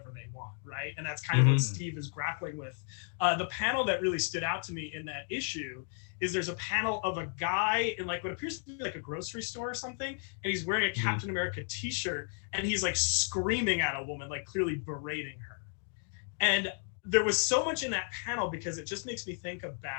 they want, right? And that's kind of what Steve is grappling with. The panel that really stood out to me in that issue is there's a panel of a guy in like what appears to be like a grocery store or something, and he's wearing a Captain America t-shirt, and he's like screaming at a woman, like clearly berating her. And there was so much in that panel, because it just makes me think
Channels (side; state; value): right; silent; 55 dB below the other